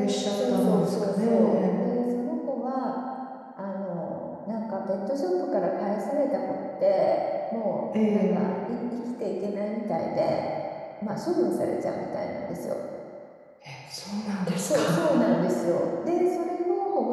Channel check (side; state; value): both; identical; correlation 1.00